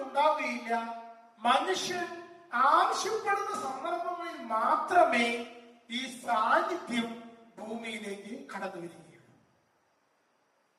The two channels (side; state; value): both; identical; correlation 1.00